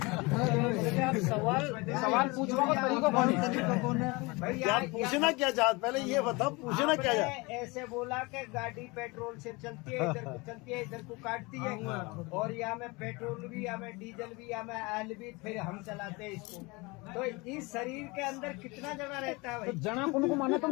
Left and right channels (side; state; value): right; quieter; 25.6 dB